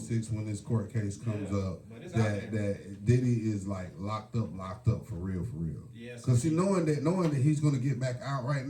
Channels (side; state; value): both; identical; correlation 1.00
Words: when this court case comes up but it's out there. that Diddy is like locked up for real. Yes. Because knowing that he's going to get back out right